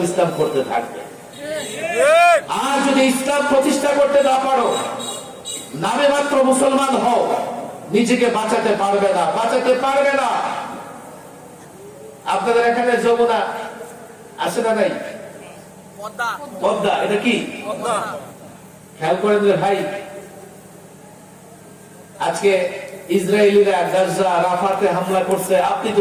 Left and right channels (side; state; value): both; identical; correlation 1.00